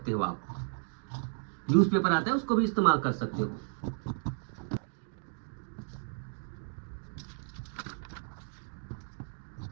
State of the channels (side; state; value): left; silent; digital silence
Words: हो आप, न्यूज पेपर आता है उसको भी इस्तेमाल कर सकते हो।